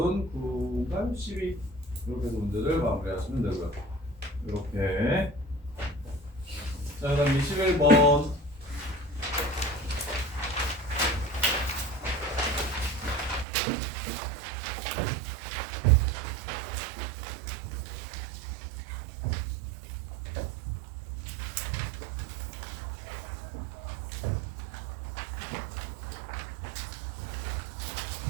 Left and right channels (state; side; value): drops out; left; at 13.5 s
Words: 9가 12 이렇게 해서 문제를 마무리하시면 되고요. 이렇게 자 그다음 21번